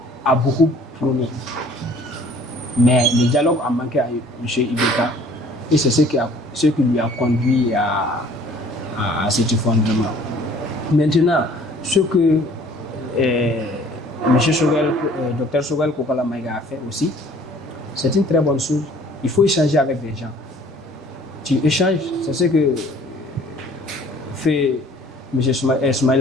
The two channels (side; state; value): both; normal; correlation 0.54